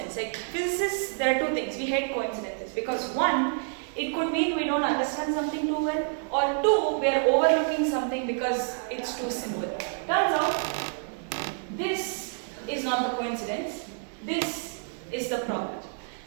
Like physicists, there are 2 things. We hate coincidences because 1, it could mean we don't understand something too well, or 2, we are overlooking something because it's too simple. Turns out, this is not the coincidence. This is the problem.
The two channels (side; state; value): left; silent; 59 dB below the other